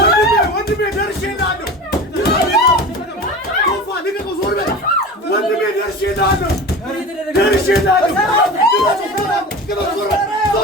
ወንድሜ ደርሼልሃለሁ። ቶፋ ልቀቀው፣ ዞር በል ወንድሜ። ደርሼልሃለሁ።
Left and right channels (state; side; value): normal; both; correlation 0.33